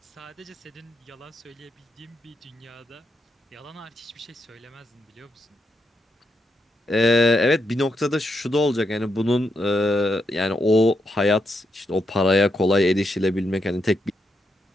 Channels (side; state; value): both; normal; correlation 0.82